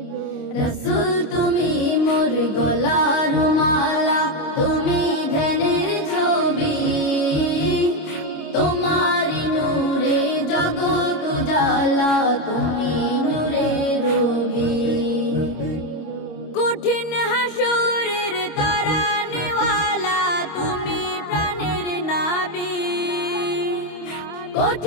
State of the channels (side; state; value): right; late; 25 ms